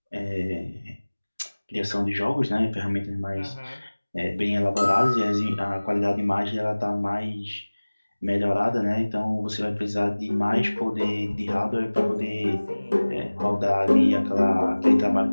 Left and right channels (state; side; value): inverted; both; correlation -1.00